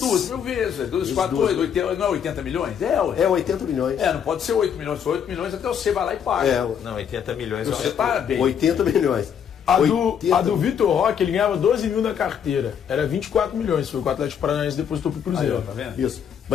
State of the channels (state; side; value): quieter; right; 8.1 dB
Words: mil vezes. 2, 4, 8, 80, não é 80 milhões? É, ué. É 80 milhões. Não pode ser 8 milhões. Se for 8 milhões, até você vai lá e paga. É, Não, 80 milhões. Você tá bem. 80 milhões. A 80 do Vitor Roque, ele ganhava 12 mil na carteira. Era 24 milhões. Foi o que o Atlético Paranaense depositou pro Aí, Cruzeiro. ó, tá vendo? Isso.